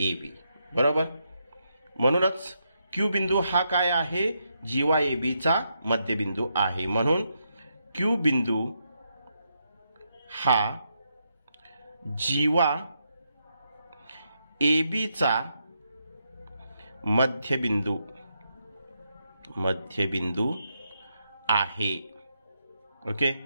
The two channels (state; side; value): inverted; both; correlation -0.81